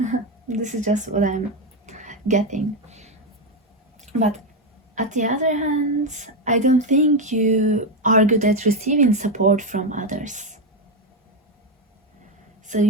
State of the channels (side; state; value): both; normal; correlation 0.08